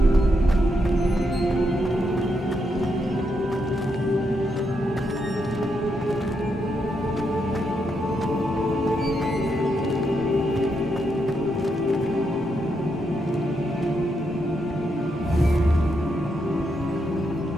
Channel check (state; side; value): normal; both; correlation 0.80